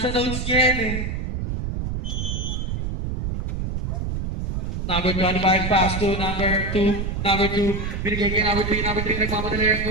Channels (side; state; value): right; noise; rumble, 3 dB below the sound